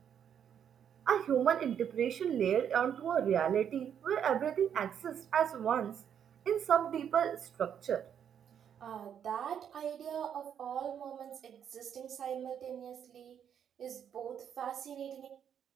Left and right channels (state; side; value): quieter; left; 8.6 dB